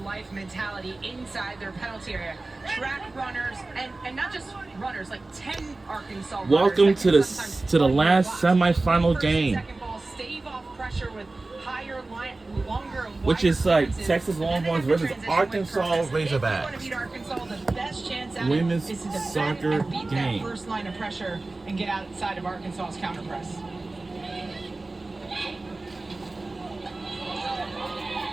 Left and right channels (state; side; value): quieter; left; 3.2 dB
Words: mentality inside their penalty area. Track runners and not just runners, like 10 Arkansas runners. Welcome to the last semifinal game, Second ball, stave off pressure with higher line, longer, which is like Texas Longhorns versus transition Arkansas with purpose. If you want to Razorbacks. beat Arkansas, the best chance at Women's it is to defend soccer and beat game. that first line of pressure and get outside of Arkansas's counter press.